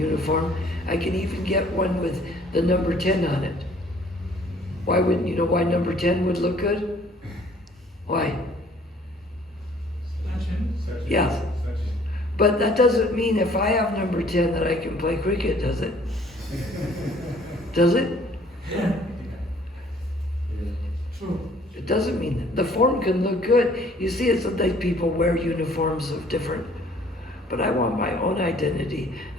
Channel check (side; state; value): both; normal; correlation 0.57